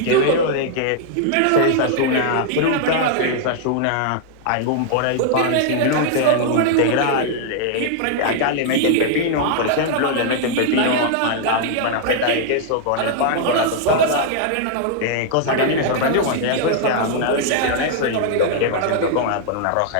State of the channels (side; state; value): both; different; correlation -0.01